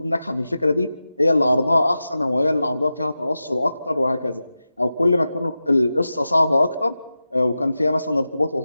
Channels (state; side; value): inverted; both; correlation -0.92